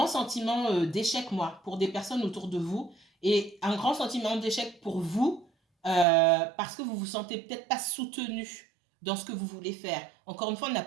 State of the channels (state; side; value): drops out; left; at 6.1 s